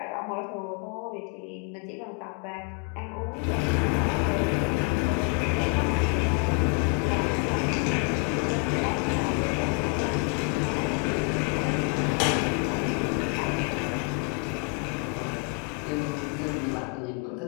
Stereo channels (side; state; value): right; quieter; 33.0 dB